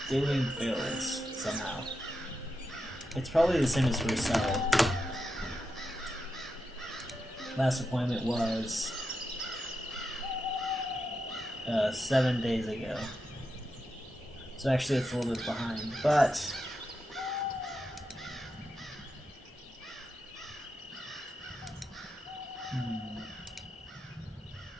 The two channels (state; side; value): normal; both; correlation 0.87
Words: doing builds somehow. It's probably the same as Resell. Last appointment was 7 days ago. So actually it's a little bit behind, but